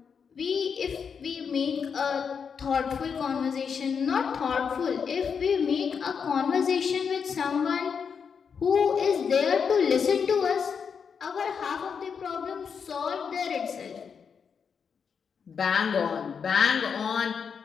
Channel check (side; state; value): right; quieter; 6.4 dB